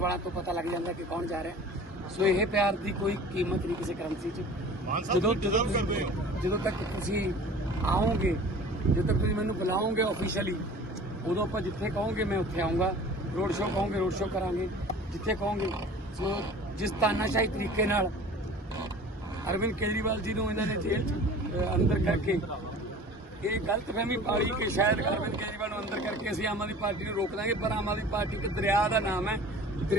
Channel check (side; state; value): both; normal; correlation 0.43